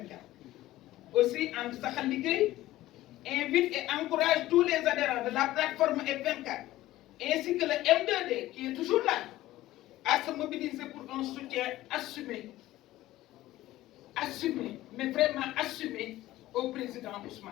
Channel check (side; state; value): right; quieter; 15.8 dB